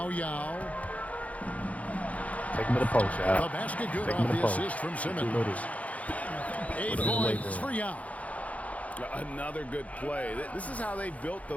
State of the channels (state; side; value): late; right; 0.068 ms